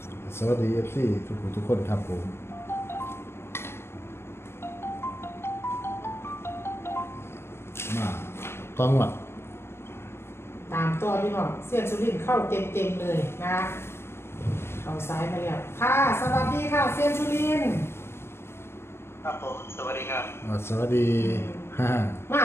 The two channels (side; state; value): right; late; 0.12 ms